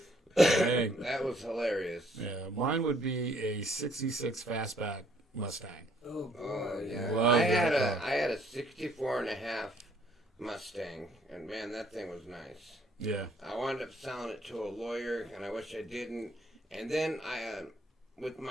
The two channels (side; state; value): both; normal; correlation 0.65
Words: Dang. That was hilarious. Yeah, mine would be a 66 Fastback Mustang. Oh yeah. Love I had that a 64 and a half Mustang, and man, that thing was nice. Yeah. I wound up selling it to a lawyer, and I wish I didn't. And then with